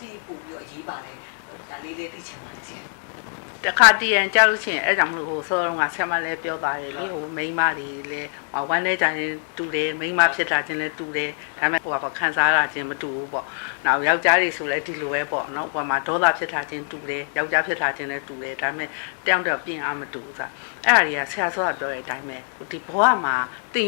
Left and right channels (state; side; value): silent; right; 62 dB below the other